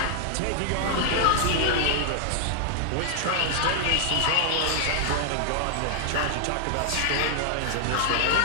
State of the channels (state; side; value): different; both; correlation 0.00